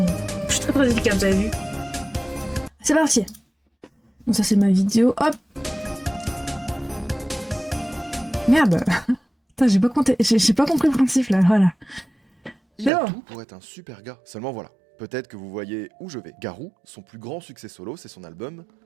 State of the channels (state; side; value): drops out; left; at 12.9 s